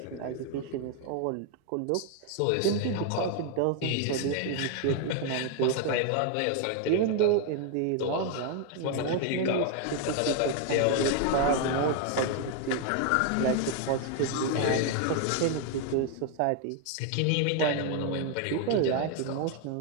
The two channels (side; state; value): both; different; correlation 0.00